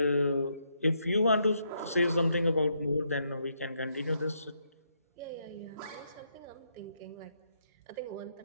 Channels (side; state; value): both; inverted; correlation -0.77